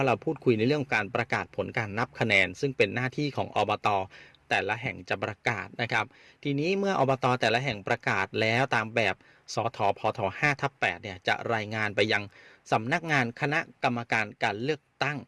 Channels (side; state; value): both; identical; correlation 1.00